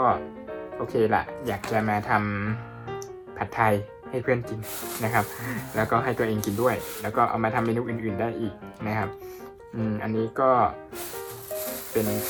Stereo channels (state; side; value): identical; both; correlation 1.00